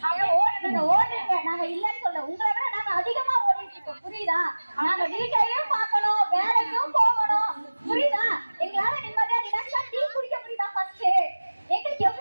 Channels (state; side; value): inverted; both; correlation -1.00